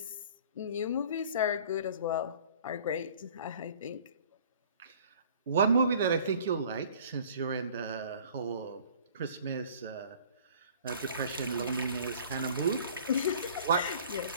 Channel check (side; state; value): both; inverted; correlation -0.50